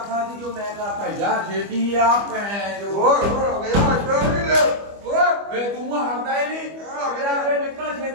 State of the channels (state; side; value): late; left; 25 ms